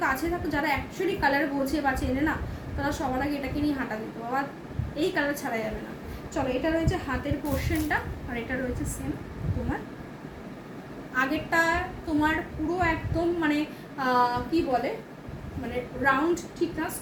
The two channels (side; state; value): both; identical; correlation 1.00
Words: কাছে থাকো, যারা অ্যাকচুয়ালি কালার বোঝে বা চেনে না, তারা সবার আগে এটাকে নিয়ে হাঁটা দিত, আবার এই কালার ছাড়া যাবে না। চলো, এটা রয়েছে হাতের পোর্শনটা, আর এটা রয়েছে সেম তোমার আগেরটা, তোমার পুরো একদম মানে কি বলে মানে রাউন্ড, ঠিক না,